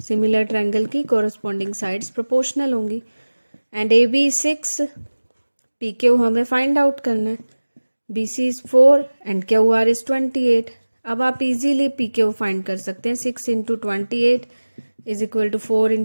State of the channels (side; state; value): both; inverted; correlation -1.00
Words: Similar triangle की कोरस्पॉन्डिंग साइड्स प्रोपोर्शनल होंगी। And A B 6, P Q हमें फाइंड आउट करना है। B C is 4 and Q R is 28। अब आप easily P Q find कर सकते हैं। 6 into 28 is equal to 4